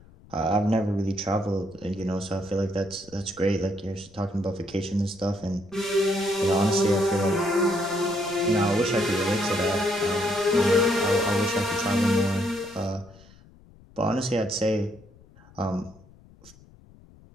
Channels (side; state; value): left; noise; rumble, 25 dB below the sound